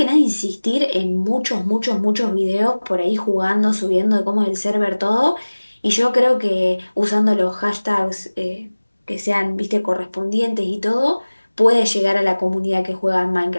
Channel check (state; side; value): inverted; both; correlation -1.00